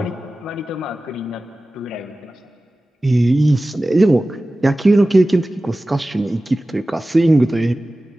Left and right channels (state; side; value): normal; both; correlation 0.96